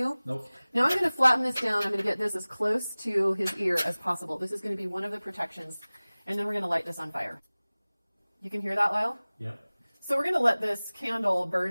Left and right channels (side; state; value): both; inverted; correlation -0.99